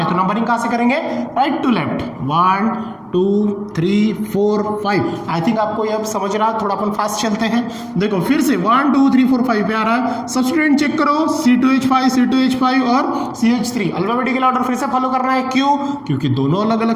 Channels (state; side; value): identical; both; correlation 1.00